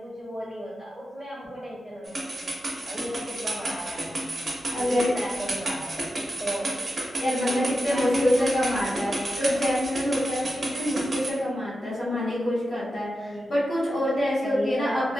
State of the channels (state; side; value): normal; both; correlation 0.90